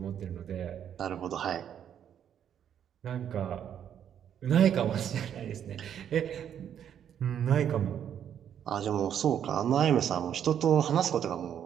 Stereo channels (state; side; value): quieter; left; 9.3 dB